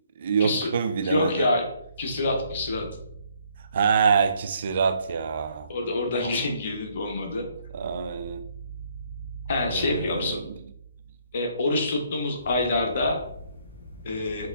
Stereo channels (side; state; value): both; inverted; correlation -0.68